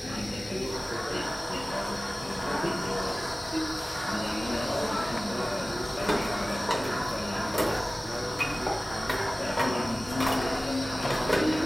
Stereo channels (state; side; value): normal; both; correlation 0.97